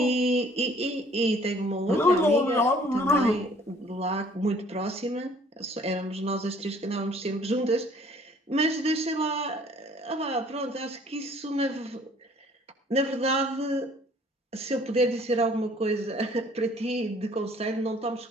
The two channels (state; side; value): normal; both; correlation 0.57